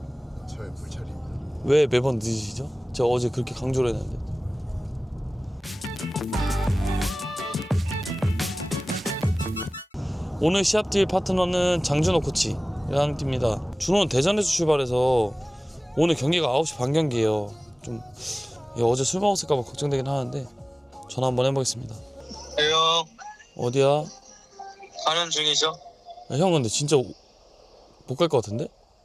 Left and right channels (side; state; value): both; normal; correlation 0.98